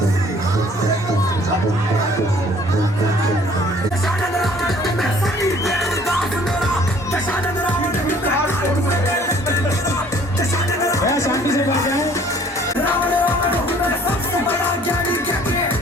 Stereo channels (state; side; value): normal; both; correlation 0.56